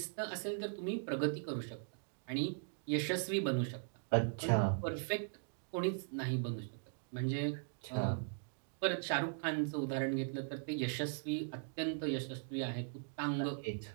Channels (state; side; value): silent; left; digital silence